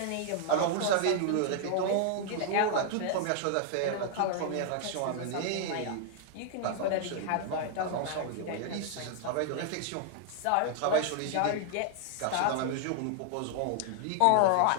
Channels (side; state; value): both; different; correlation 0.00